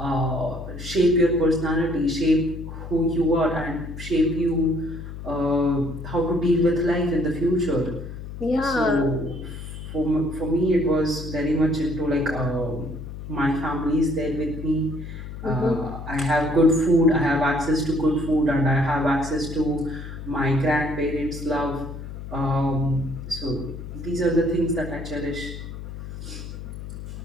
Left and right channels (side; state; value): left; noise; hum, 10 dB below the sound